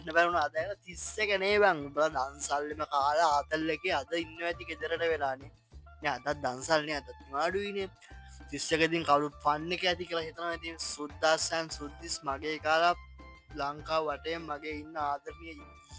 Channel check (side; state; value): both; identical; correlation 1.00